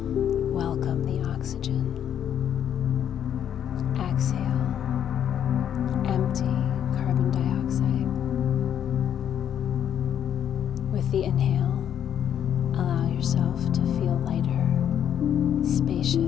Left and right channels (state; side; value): quieter; right; 9.5 dB